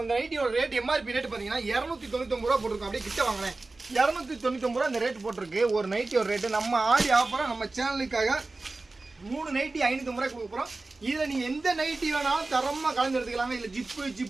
இந்த நைட்டியோட ரேட் எம்ஆர்பி ரேட் பாத்தீங்கன்னா 299 ரூபா போட்டிருக்கோம். அப்படியே கிட்ட வாங்கினேன் 299 ரூபா இந்த ரேட் போட்டிருக்கு. ஒரு நைட்டியோட ரேட்டு நம்ம ஆடி ஆஃபரா நம்ம சேனலுக்காக 3 நைட்டி 550 ரூபாய் கொடுக்க போறோம். இதில் நீங்கள் எந்த நைட்டி வேணாலும் தரமாக கலந்து எடுத்துக்கலாங்க. இல்லை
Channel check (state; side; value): quieter; left; 3.3 dB